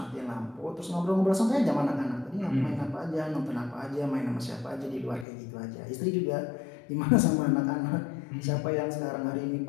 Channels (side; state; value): right; drops out; at 5.2 s